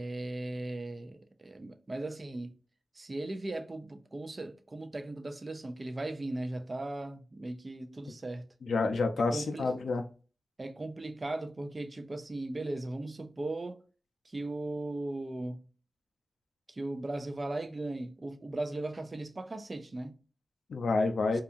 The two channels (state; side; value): normal; both; correlation 0.92